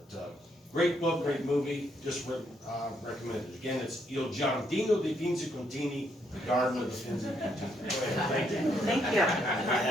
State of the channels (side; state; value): both; normal; correlation 0.74